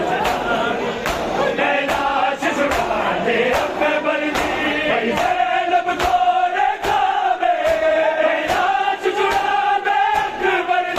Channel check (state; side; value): identical; both; correlation 1.00